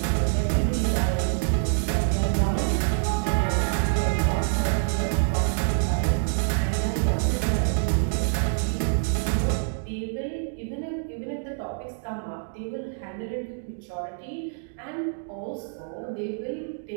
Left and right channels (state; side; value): silent; left; digital silence